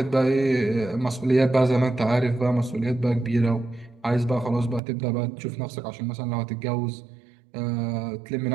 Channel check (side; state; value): left; drops out; at 4.8 s